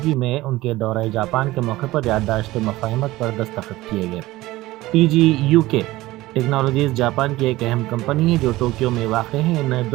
میں ان کے دورہ جاپان کے موقع پر یادداشت مفاہمت پر دستخط کیے گئے۔ TGU کے ٹیکنالوجیز جاپان کی ایک اہم کمپنی ہے جو ٹوکیو میں واقع ہے۔ ان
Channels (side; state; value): left; quieter; 18.0 dB